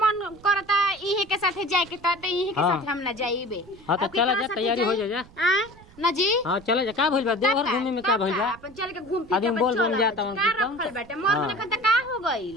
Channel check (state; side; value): noise; right; rumble, 23 dB below the sound